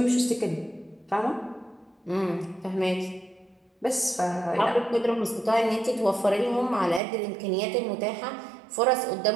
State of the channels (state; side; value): drops out; left; at 7.0 s